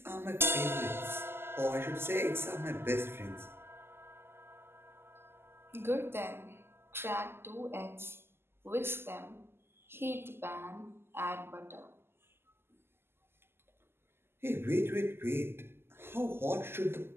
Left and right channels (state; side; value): late; left; 0.12 ms